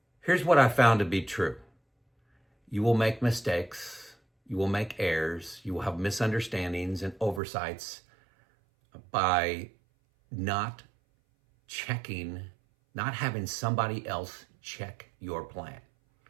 Here's what I found to be true. You will make mistakes. You will make errors. You will have misunderstandings and oversights by not checking, not having somebody else check your plan.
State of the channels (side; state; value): left; drops out; at 7.4 s